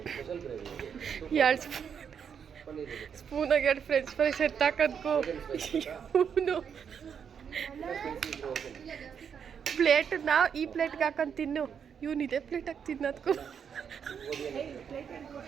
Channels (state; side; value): quieter; left; 7.4 dB